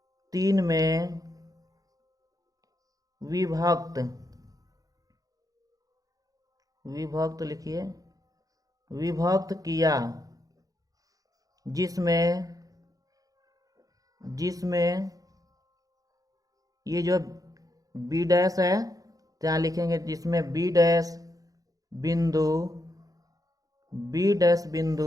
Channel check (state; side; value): late; left; 0.17 ms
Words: में विभक्त लिखिए, विभक्त किया, जिसमें ये जो B डैश है तो यहाँ लिखेंगे, जिसमें B डैश